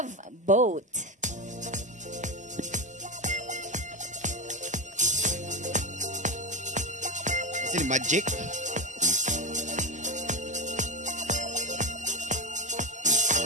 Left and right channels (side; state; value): both; normal; correlation 0.14